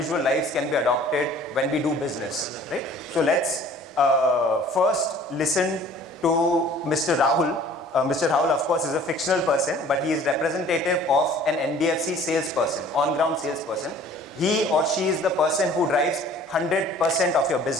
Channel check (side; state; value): both; normal; correlation 0.51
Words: lives can be adopted when we do business, right? So let's first listen to Mr. Rahul. Mr. Rahul, of course, is a fictional person, but he is representative of an NBFC salesperson, on-ground salesperson. He or she is the person who drives 100% of your